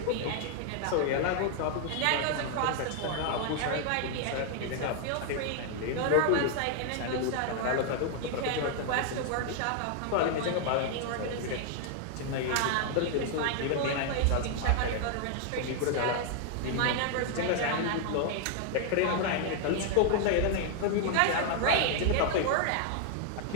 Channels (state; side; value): different; both; correlation 0.00